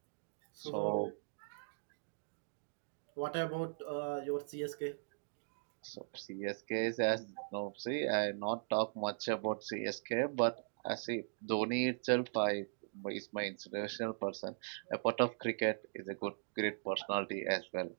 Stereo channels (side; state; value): left; silent; digital silence